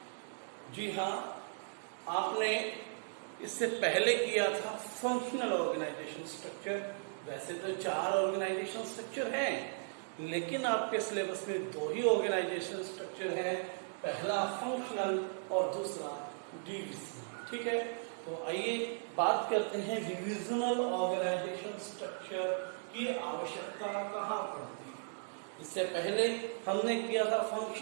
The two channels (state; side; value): silent; left; digital silence